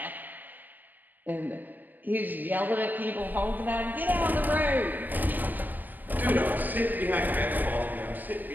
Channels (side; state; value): left; late; 0.085 ms